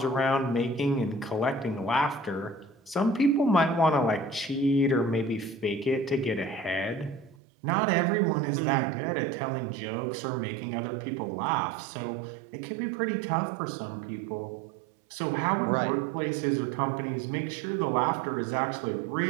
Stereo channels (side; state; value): left; drops out; at 7.4 s